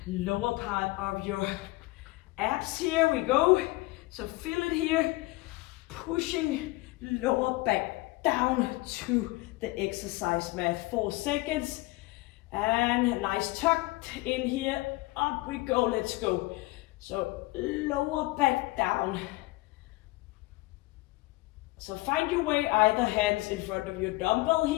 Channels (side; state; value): right; quieter; 21.1 dB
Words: Lower part of your abs, here we go. So feel it here, pushing lower back down to the exercise mat. 4 seconds, and nice tucked in here, up we go, let's go. So lower back down. So find your way, either hands in front of your dumbbell